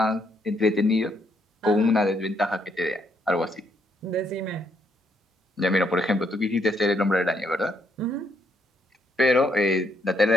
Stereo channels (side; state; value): both; normal; correlation 0.73